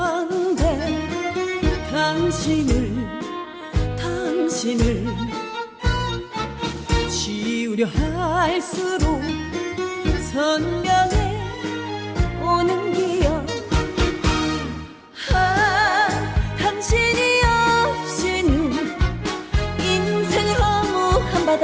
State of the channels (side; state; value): both; identical; correlation 1.00